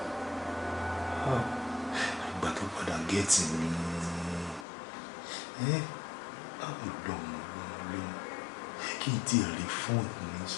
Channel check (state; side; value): drops out; right; at 4.7 s